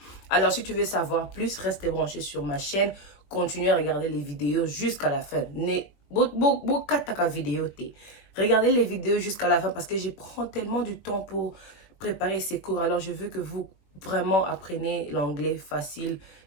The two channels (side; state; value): right; late; 21 ms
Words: Alors, si tu veux savoir plus, reste branché sur ma chaîne. Continuez à regarder les vidéos jusqu'à la fin. Regardez les vidéos jusqu'à la fin parce que je prends tellement du temps pour préparer ces cours. Alors, je veux que vous vraiment appreniez l'anglais facile,